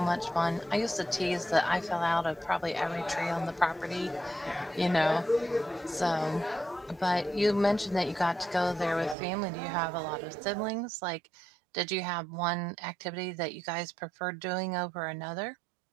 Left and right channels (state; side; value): drops out; left; at 9.2 s